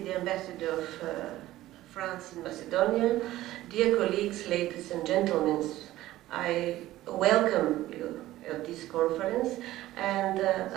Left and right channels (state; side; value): quieter; left; 15.5 dB